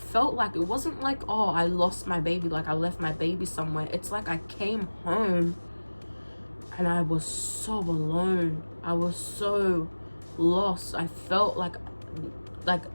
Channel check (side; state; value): both; inverted; correlation -1.00